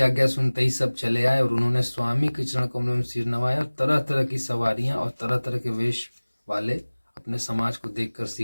आज्ञा सुनते ही सब चले आए और उन्होंने स्वामी के चरण कमलों में सिर नवाया और तरह तरह की सवारियां और तरह तरह के वेश वाले अपने समाज को देखकर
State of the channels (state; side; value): inverted; both; correlation -1.00